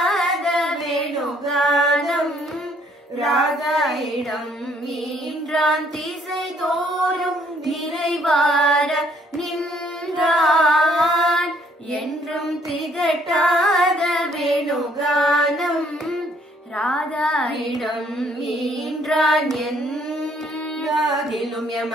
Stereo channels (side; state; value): both; normal; correlation 0.65